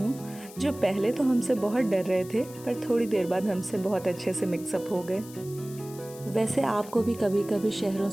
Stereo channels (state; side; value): noise; left; hiss, 18 dB below the sound